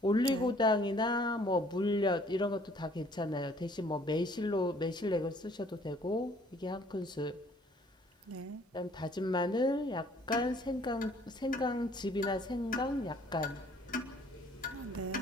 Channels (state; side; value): normal; both; correlation 0.58